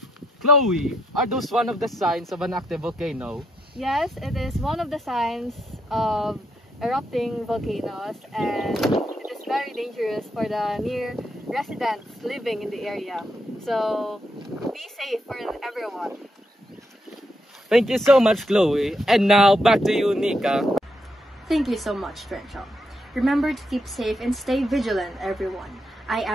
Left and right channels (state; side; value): normal; both; correlation 0.78